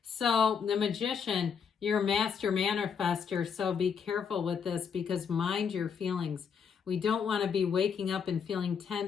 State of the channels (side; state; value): right; quieter; 6.7 dB